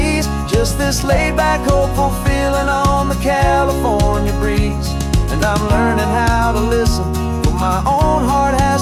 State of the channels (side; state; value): both; identical; correlation 1.00